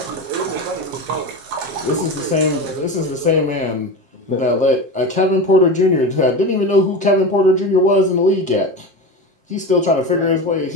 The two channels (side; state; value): left; late; 7.4 ms